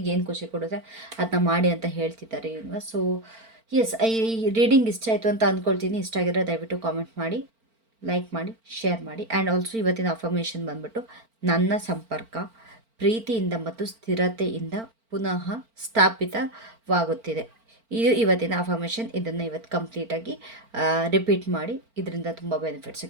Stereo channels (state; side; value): late; left; 4.4 ms